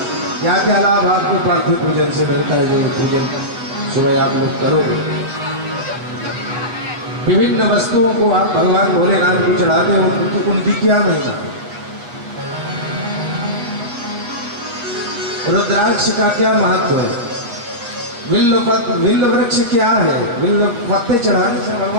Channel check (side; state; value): left; late; 8.3 ms